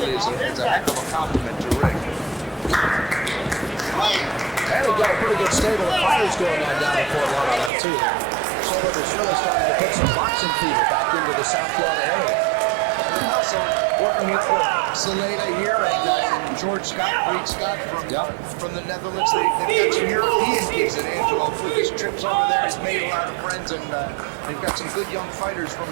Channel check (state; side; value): drops out; left; at 7.7 s